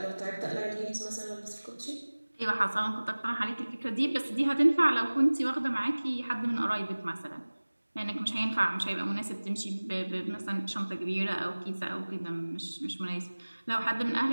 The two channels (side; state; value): both; inverted; correlation -1.00